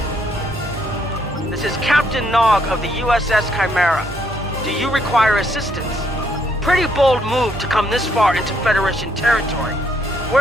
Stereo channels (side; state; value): both; normal; correlation 0.71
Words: This is Captain Nog of the USS Chimera. Do you require assistance? Pretty bold move to come this far into Federation territory.